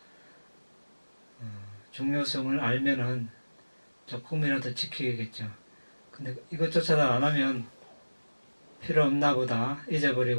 중요성을 알면은 조금이라도 지키겠죠. 근데 이것조차도 안 하면 필요 없나 보다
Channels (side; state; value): both; inverted; correlation -1.00